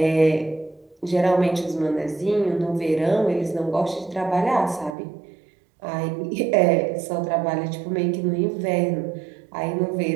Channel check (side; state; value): left; drops out; at 5.0 s